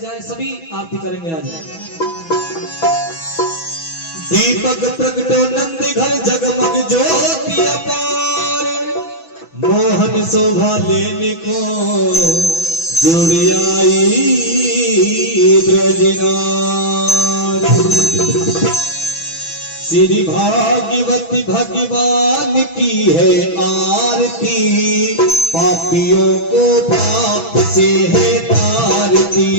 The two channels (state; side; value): late; right; 6.1 ms